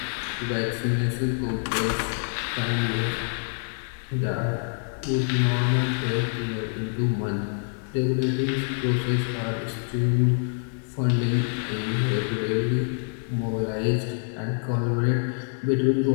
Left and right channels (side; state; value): right; silent; 61 dB below the other